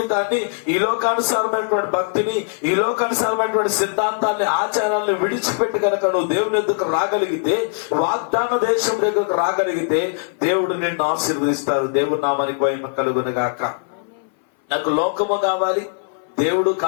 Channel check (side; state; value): right; silent; 60 dB below the other